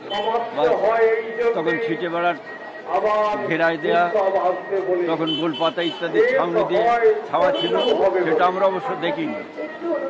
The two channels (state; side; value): identical; both; correlation 1.00